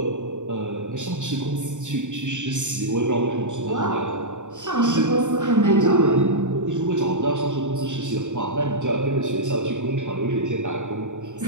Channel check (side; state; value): left; late; 0.85 ms